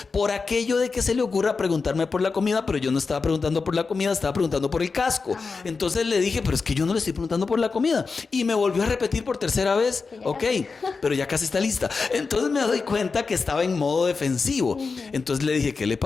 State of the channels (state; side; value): quieter; right; 4.6 dB